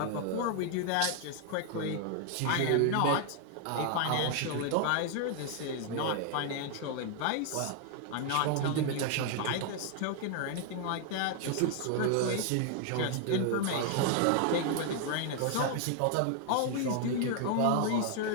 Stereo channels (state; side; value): different; both; correlation 0.00